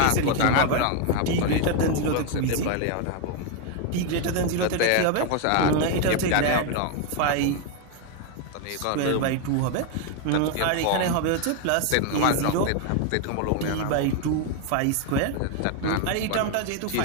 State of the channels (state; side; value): different; both; correlation 0.01